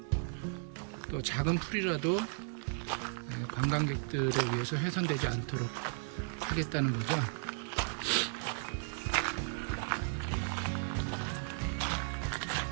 또 작은 풀이라도 관광객들에 의해서 훼손되지 않도록 하겠다는 거죠.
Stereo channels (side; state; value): left; silent; 54 dB below the other